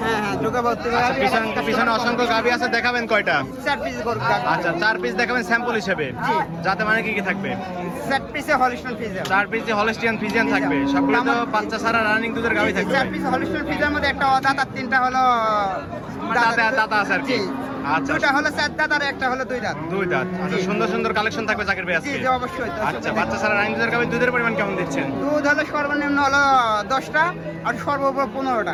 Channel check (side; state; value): both; identical; correlation 1.00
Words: হ্যাঁ হ্যাঁ ঢোকা ভর্তি আচ্ছা, পিছনে অসংখ্য গাবি আছে, দেখাবেন কয়টা? 4 পিস করব। আচ্ছা 4 পিস দেখাবেন স্যাম্পল হিসেবে। জি। যাতে মানে কি কি থাকবে? 4 পিসে হলিস্টাইন ফ্রিজিয়ান। 4 পিসে হলস্টিয়ান ফ্রিজিয়ান থাকবে, সবগুলো তো বাচ্চা ছাড়া রানিং দুধের গাবি থাকবে। 4 পিস হলিস্টাইন ফ্রিজিয়ার মধ্যে একটা অদাঁত আর 3টা হলো দাঁতা আছে আর কি। জি। আচ্ছা দুটো হলো 4 দাঁত আর একটা হলো 2 দাঁত। 2 দাঁত। আচ্ছা জি। সুন্দর সুন্দর কালেকশন থাকবে জাকির ভাই জি আজকে। জি অবশ্যই। আচ্ছা বাচ্চা ছাড়া রানিং দুধের গাবি দুধের পরিমাণ কেমন দিচ্ছেন? দুধ হলো সর্বনিম্ন হলো 10টা আর সর্বোপরি 15টা।